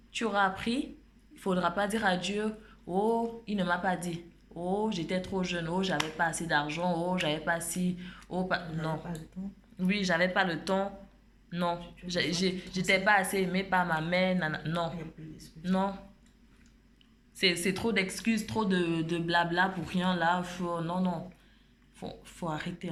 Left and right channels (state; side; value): identical; both; correlation 1.00